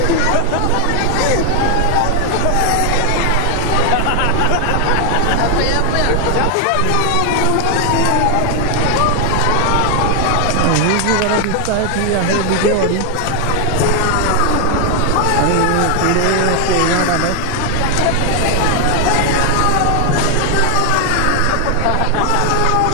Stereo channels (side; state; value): both; different; correlation 0.00